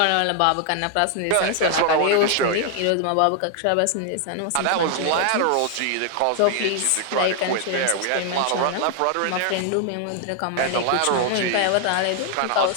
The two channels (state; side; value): different; both; correlation 0.00